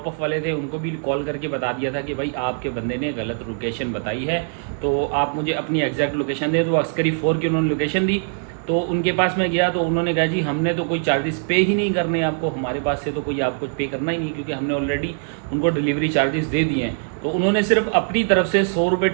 ऑफ वाले थे उनको भी कॉल करके बता दिया था कि भाई आपके बंदे ने गलत लोकेशन बताई है, तो आप मुझे अपनी एग्जैक्ट लोकेशन दें। तो अस्करी 4 की उन्होंने लोकेशन दी। तो उनके पास मैं गया तो उन्होंने कहा जी हमने तो कोई चार्जेस पे ही नहीं करने आपको, हमारे पास से तो कोई आपको पे करना ही नहीं, क्योंकि हमने ऑलरेडी उनको डिलीवरी चार्जेस दे दिए हैं। तो उन्होंने सिर्फ अपनी तरफ से 100 रुपये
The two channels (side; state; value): left; silent; 64 dB below the other